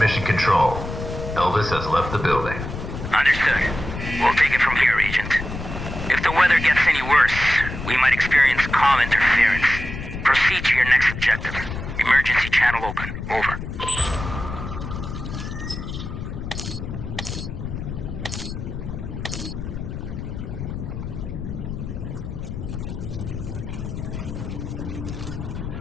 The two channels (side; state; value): left; noise; rumble, 7 dB below the sound